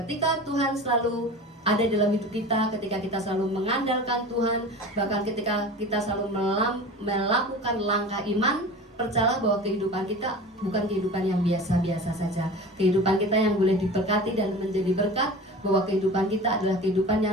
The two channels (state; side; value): normal; both; correlation 0.35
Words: ketika Tuhan selalu ada dalam hidup kita, ketika kita selalu mengandalkan Tuhan, bahkan ketika kita selalu melakukan langkah iman, percayalah bahwa kehidupan kita bukan kehidupan yang biasa-biasa saja. Kehidupan kita yang boleh diberkati dan menjadi berkat, bahwa kehidupan kita adalah kehidupan